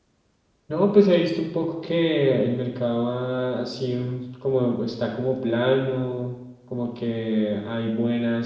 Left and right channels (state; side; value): identical; both; correlation 1.00